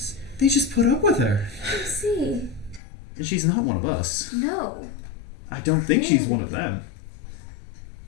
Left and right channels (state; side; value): drops out; right; at 2.8 s